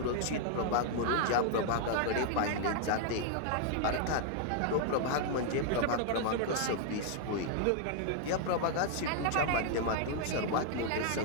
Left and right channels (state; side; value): different; both; correlation 0.00